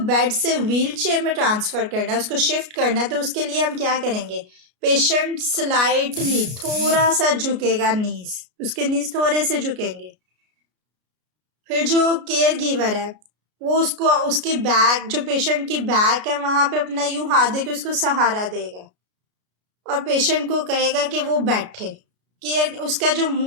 से व्हील चेयर में ट्रांसफ़र करना है, उसको शिफ्ट करना है, तो उसके लिए हम क्या करेंगे, पेशेंट स्लाइटली थोड़ा सा झुकेगा, उसके नीज थोड़े से झुकेंगे। फिर जो केयर गिवर है वो उसको उसकी बैक जो पेशेंट की बैक है वहाँ पे अपना यूं हाथ देके उसको सहारा देगा और पेशेंट को कहेगा कि वो बैठे। उसका जो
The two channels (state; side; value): late; left; 33 ms